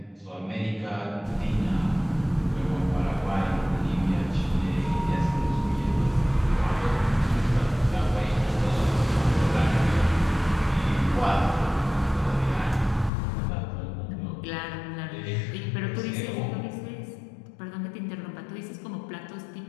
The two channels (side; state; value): right; drops out; at 13.1 s